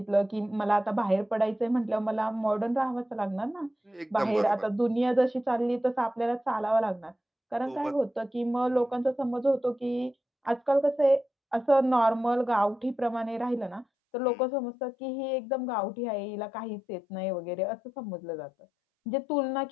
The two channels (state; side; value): drops out; right; at 13.9 s